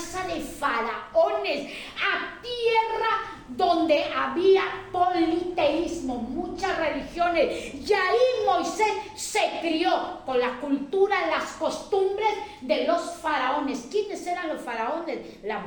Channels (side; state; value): both; identical; correlation 1.00